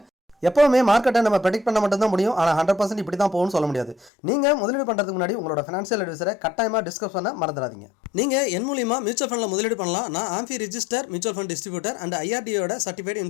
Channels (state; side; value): drops out; right; at 4.1 s